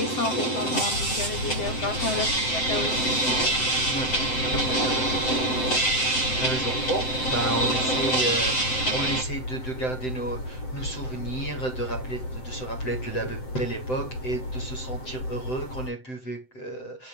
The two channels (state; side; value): late; right; 7.8 ms